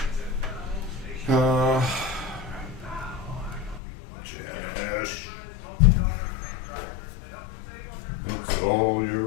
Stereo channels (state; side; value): drops out; right; at 3.8 s